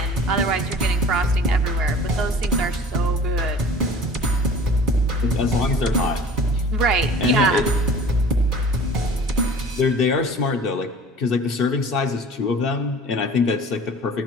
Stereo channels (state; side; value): normal; both; correlation 0.44